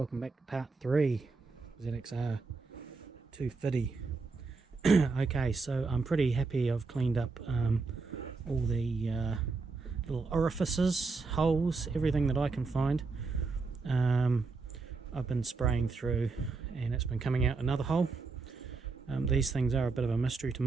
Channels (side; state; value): left; quieter; 4.1 dB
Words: back to part 3 ZXR 250. Okay, so I'm pretty happy I've cleaned up all the little orifices, holes, everything that I can find. I've been spraying through and it's been coming out another hole. These things are a bit of a mystery to